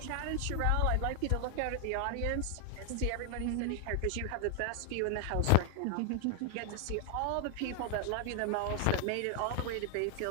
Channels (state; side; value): different; both; correlation 0.00